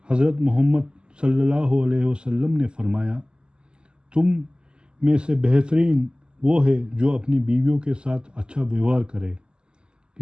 حضرت محمد صلی اللہ علیہ وسلم نے فرمایا، تم میں سے بہترین وہ ہے جو اپنی بیویوں کے ساتھ اچھا ویوہار کرے۔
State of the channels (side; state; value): left; late; 0.048 ms